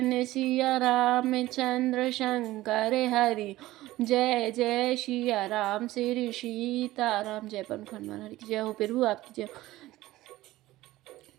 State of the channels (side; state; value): left; quieter; 16.9 dB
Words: सिया रामचंद्र शंकर हरि, जय जय सिया राम श्री सीताराम। जय पवन हनुमान हरि की जय हो। प्रभु आपकी जय हो।